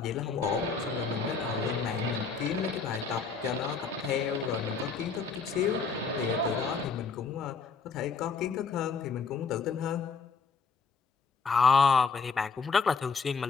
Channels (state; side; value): quieter; right; 5.1 dB